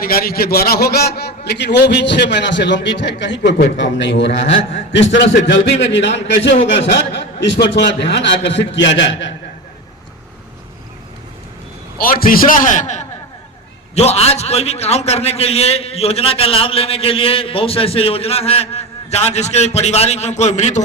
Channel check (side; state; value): both; normal; correlation 0.23